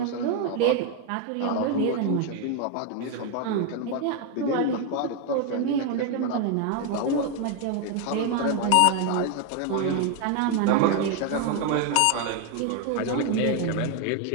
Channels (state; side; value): different; both; correlation 0.01